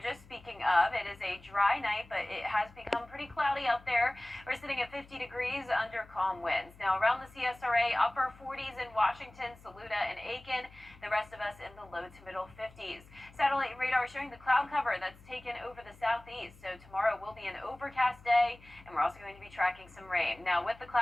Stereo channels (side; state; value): left; noise; hum, 23 dB below the sound